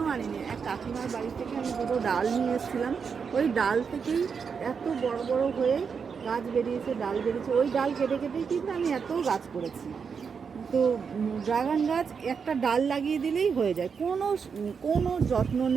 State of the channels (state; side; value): quieter; left; 6.1 dB